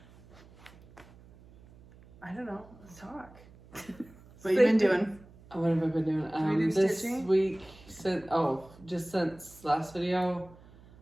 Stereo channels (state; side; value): noise; right; hum, 23 dB below the sound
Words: I don't know. Let's talk. What you been doing? What have I been doing? we do This stitching? week, just since last video,